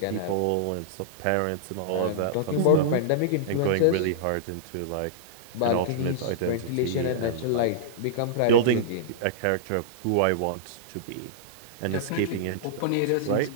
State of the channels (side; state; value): both; different; correlation -0.02